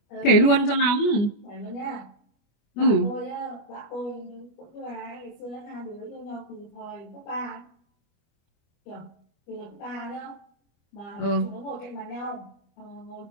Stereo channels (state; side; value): late; right; 25 ms